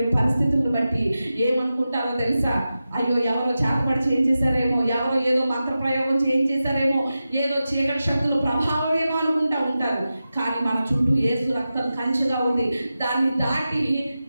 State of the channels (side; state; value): both; inverted; correlation -0.92